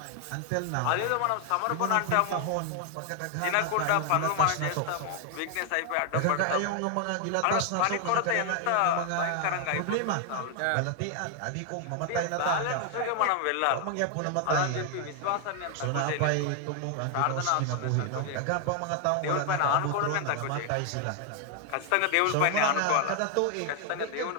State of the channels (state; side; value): different; both; correlation 0.00